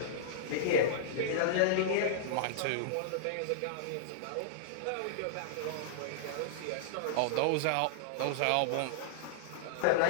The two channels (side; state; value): both; different; correlation -0.02